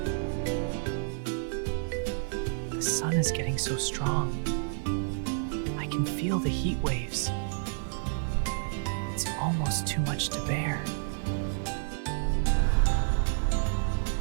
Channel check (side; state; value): left; silent; 58 dB below the other